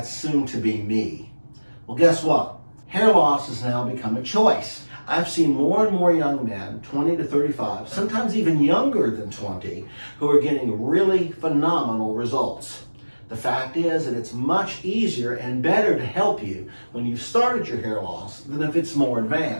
soon to be me. Well, guess what? Hair loss has now become a choice. I've seen more and more young men, 20 to 35, sometimes even younger than 20, who are getting really phenomenal results. The fact is that it's much easier and better to help you when you've started your hair loss than if it's more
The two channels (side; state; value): both; inverted; correlation -1.00